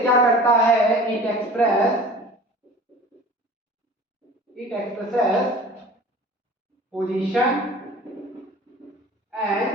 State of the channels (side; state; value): both; normal; correlation 0.43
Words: क्या करता है? It expresses position and